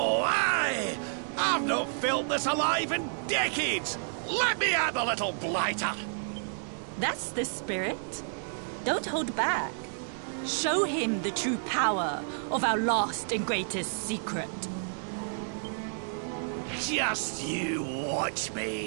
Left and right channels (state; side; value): silent; left; digital silence